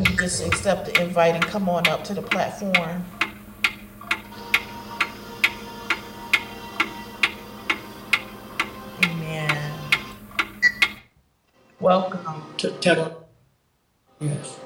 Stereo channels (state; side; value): identical; both; correlation 1.00